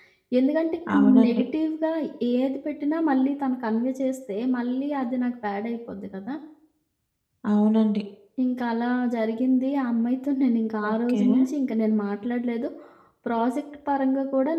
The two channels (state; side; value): identical; both; correlation 1.00